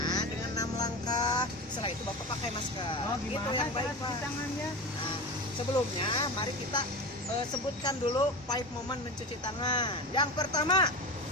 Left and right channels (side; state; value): both; normal; correlation 0.25